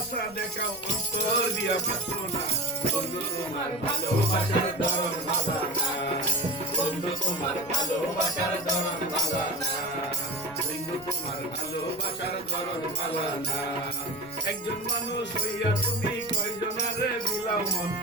দেখাও অন্তর দিয়া পাত্র না। বন্ধু তোমার ভালোবাসার ধরন ভালো না, বন্ধু তোমার ভালোবাসার ধরন ভালো না, বন্ধু তোমার ভালোবাসার ধরন ভালো না। একজন মানুষ হইয়া তুমি কয়জনারে বিলাও মন,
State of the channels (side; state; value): right; noise; rumble, 24 dB below the sound